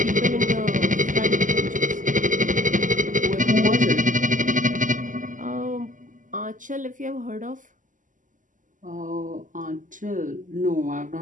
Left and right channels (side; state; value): left; late; 0.38 ms